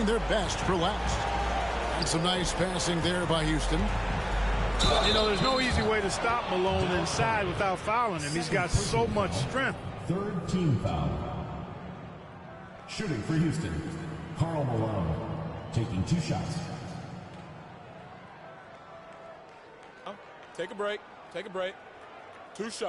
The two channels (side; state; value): both; identical; correlation 1.00